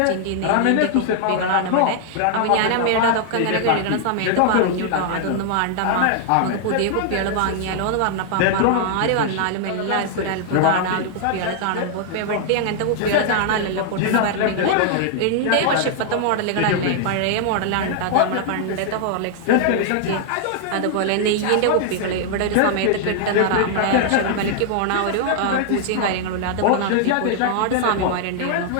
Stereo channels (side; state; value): both; different; correlation -0.01